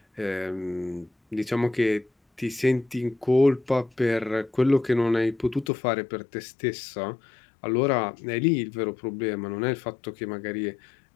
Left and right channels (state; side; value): drops out; right; at 5.7 s